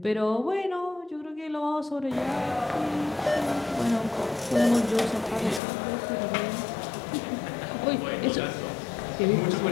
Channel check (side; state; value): right; drops out; at 5.6 s